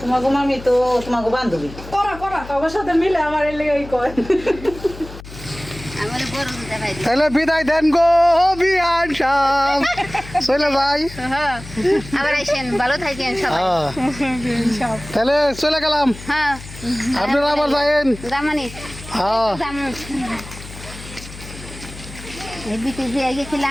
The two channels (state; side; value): noise; left; hum, 15 dB below the sound